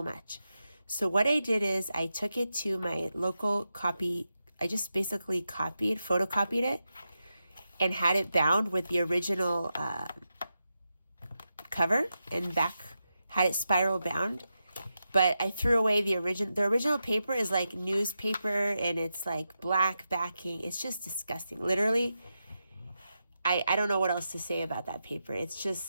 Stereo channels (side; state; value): both; inverted; correlation -0.88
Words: much. So what I did is I took it to my local copy. I just basically photocopied it, and had it bound with the original cover and back, had it spiral bound. But I threw away the original paper is like newspaper, and it's like black backing. It's just disgusting. Literally, I don't know what else to say about that paper. It's